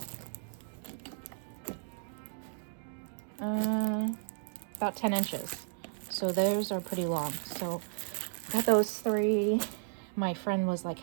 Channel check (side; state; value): left; silent; digital silence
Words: about 10 inches. So those are pretty long. So got those 3. My friend was like,